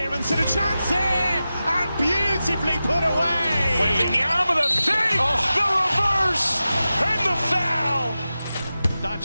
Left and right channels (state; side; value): inverted; both; correlation -0.94